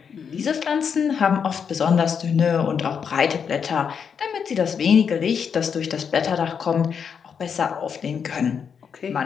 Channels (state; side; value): quieter; right; 6.9 dB